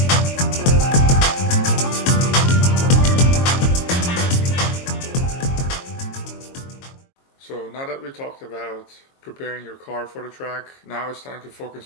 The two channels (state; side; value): late; right; 22 ms